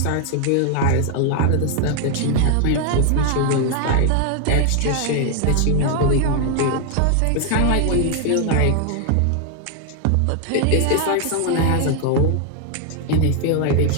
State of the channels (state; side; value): different; both; correlation 0.00